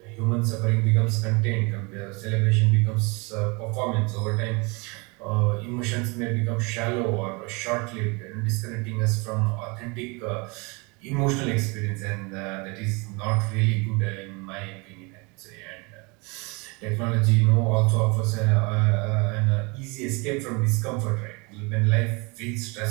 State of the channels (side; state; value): left; quieter; 29.0 dB